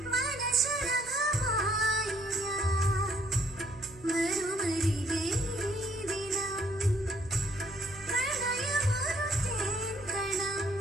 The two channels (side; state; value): right; noise; hum, 19 dB below the sound